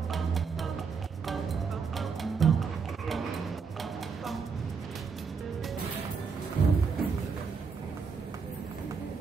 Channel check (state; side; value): quieter; left; 5.5 dB